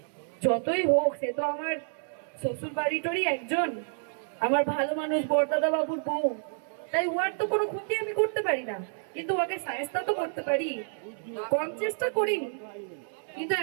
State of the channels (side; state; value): left; silent; digital silence